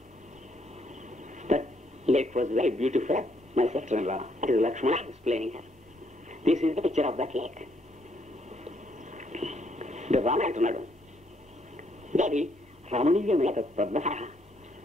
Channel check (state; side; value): normal; both; correlation 0.71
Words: That lake was very beautiful. My sister-in-law, that is Lakshmana, explaining her. This is the picture of that lake. The Rama అంటున్నాడు, దేవి రమణీయమైన పద్మసర,